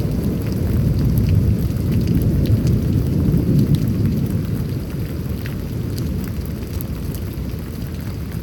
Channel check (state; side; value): identical; both; correlation 1.00